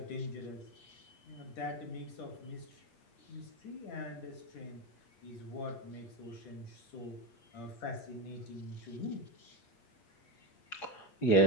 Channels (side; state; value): right; late; 8.5 ms